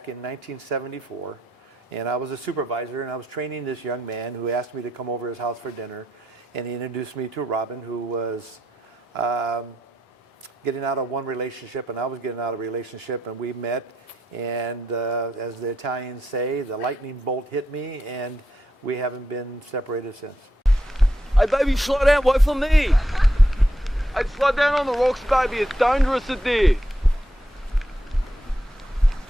in 1974, and I was a supervisor, and I was training this young man who asked me to come over to his house for dinner, and he introduced me to Robin, who was getting out of one relationship, and I was getting out of a relationship, and we met, and as the Italians say, the lightning bolt hit me, and we haven't been separated since. Hey, baby, slow down. Wait for me. Hey, slow down on the rocks, baby. It's dangerous in there.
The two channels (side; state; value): both; normal; correlation 0.82